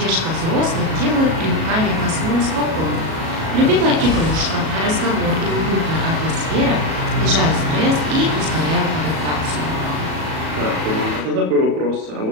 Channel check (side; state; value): left; late; 37 ms